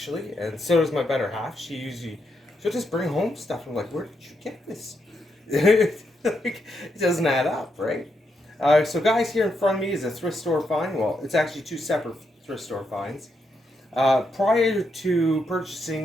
and so does my better half. She'll just bring home stuff. I'm like, where did you get this? It doesn't add up, right? So guys, here in front of me is a thrift store find. Well, it's actually two separate thrift store finds. Prior to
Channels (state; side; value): normal; both; correlation 0.81